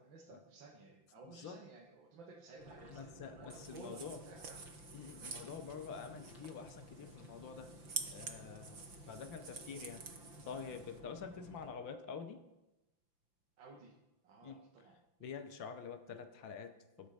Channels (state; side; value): late; left; 5.9 ms